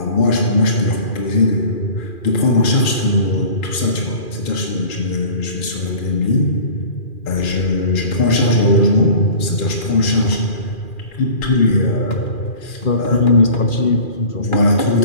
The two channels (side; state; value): right; late; 2.4 ms